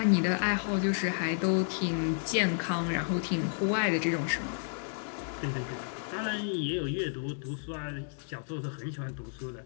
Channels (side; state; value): right; silent; digital silence